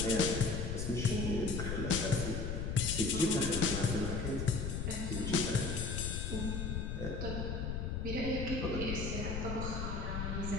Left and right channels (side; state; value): left; noise; rumble, 2 dB below the sound